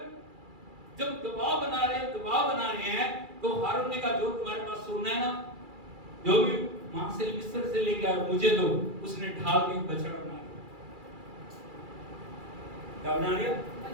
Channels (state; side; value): late; left; 2.4 ms